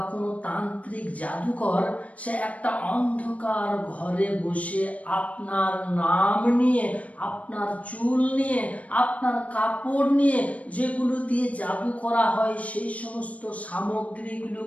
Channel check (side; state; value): right; late; 0.067 ms